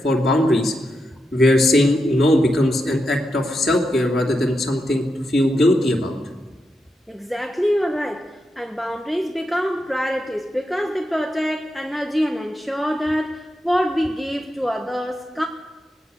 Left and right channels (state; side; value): normal; both; correlation 0.86